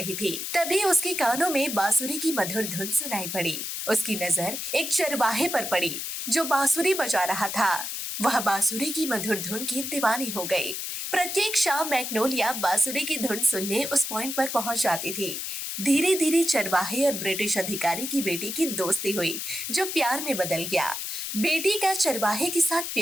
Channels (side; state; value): left; noise; hiss, 5 dB below the sound